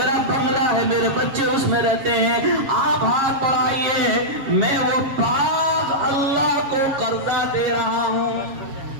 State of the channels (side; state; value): left; late; 7.3 ms